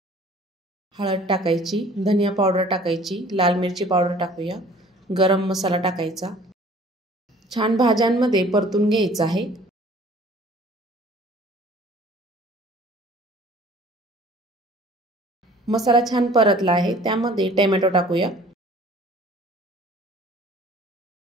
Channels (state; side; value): normal; both; correlation 0.51